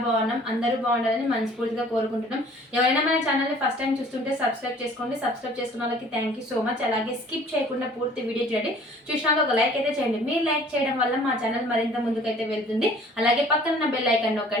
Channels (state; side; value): normal; both; correlation 0.52